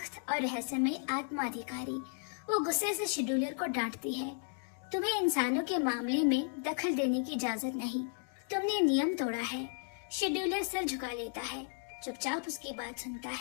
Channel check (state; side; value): silent; right; 55 dB below the other